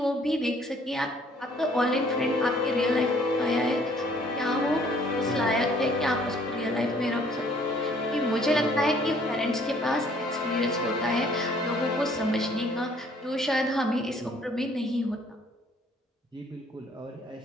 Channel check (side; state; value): both; normal; correlation 0.60